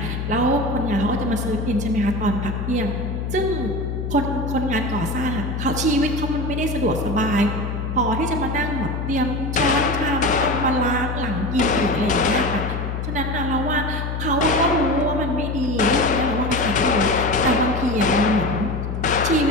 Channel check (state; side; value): noise; left; hum, 3 dB below the sound